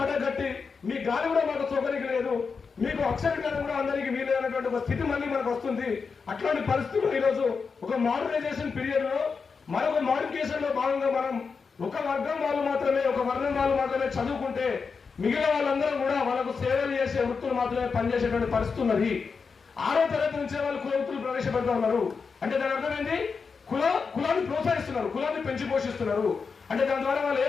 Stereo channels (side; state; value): right; quieter; 5.2 dB